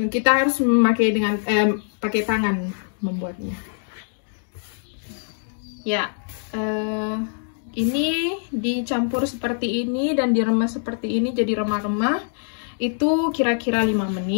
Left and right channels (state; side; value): silent; right; digital silence